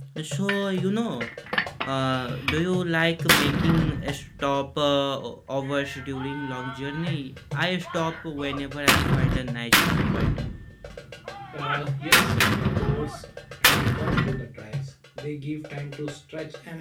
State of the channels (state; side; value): identical; both; correlation 1.00